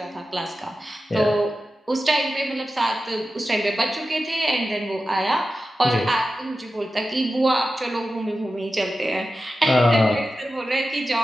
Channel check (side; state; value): both; normal; correlation 0.93